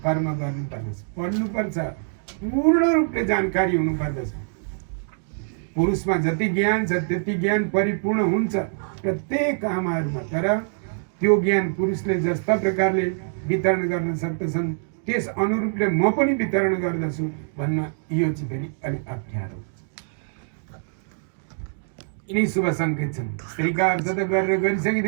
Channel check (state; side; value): silent; left; digital silence